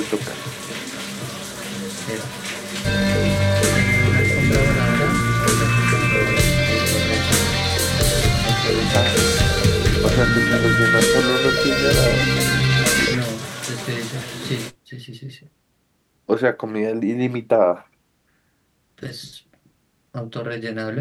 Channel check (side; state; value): both; identical; correlation 1.00